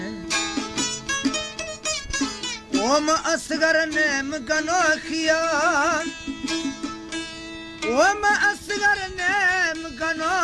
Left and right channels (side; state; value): both; identical; correlation 1.00